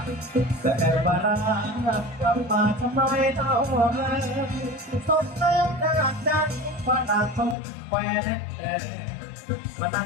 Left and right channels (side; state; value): right; drops out; at 7.6 s